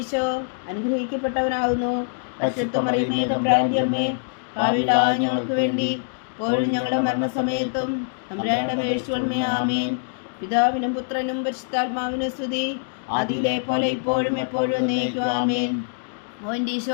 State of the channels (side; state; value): right; silent; 63 dB below the other